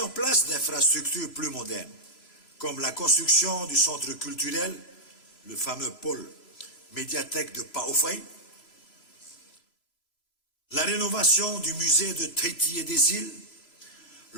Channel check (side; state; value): right; late; 3.0 ms